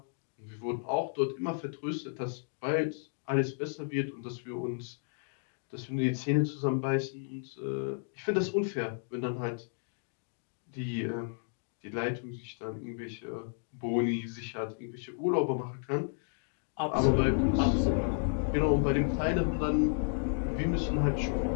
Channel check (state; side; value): silent; right; digital silence